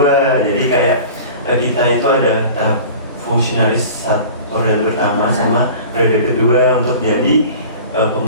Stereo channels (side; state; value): both; inverted; correlation -0.40